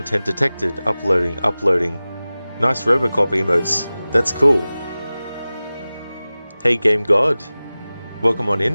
detected, uploading. Nice Robocop emotes, that's cool. Hey Game God, welcome on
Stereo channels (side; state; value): both; inverted; correlation -0.97